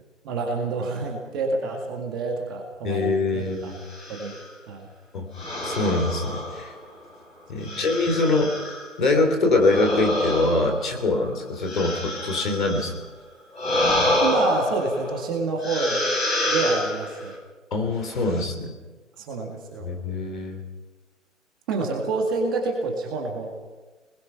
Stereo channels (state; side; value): normal; both; correlation 0.46